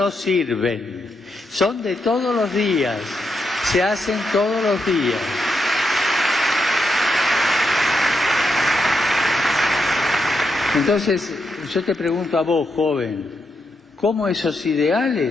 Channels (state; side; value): normal; both; correlation 0.83